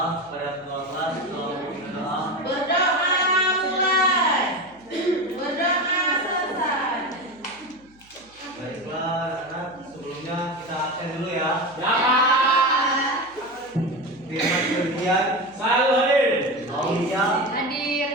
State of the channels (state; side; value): noise; right; hum, 30 dB below the sound